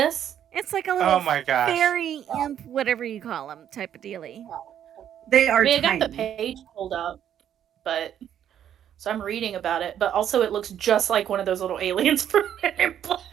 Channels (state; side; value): quieter; left; 9.9 dB